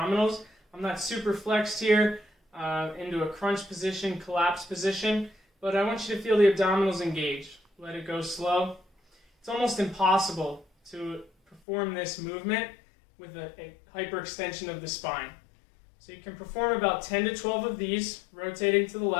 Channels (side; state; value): right; drops out; at 11.6 s